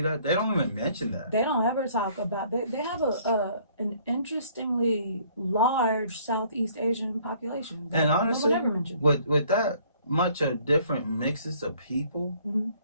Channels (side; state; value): both; inverted; correlation -0.60